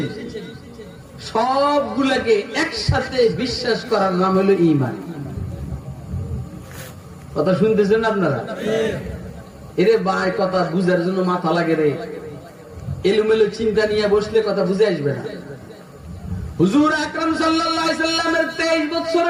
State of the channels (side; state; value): both; identical; correlation 1.00